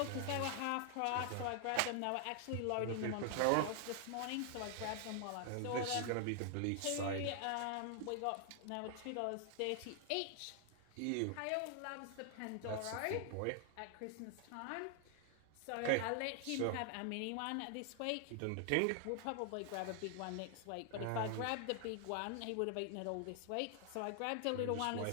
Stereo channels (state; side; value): different; both; correlation 0.00